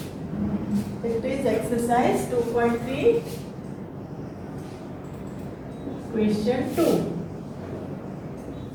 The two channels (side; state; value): both; identical; correlation 1.00